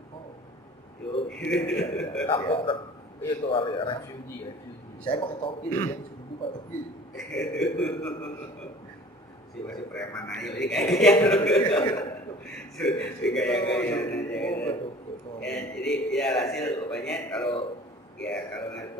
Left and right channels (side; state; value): both; normal; correlation 0.46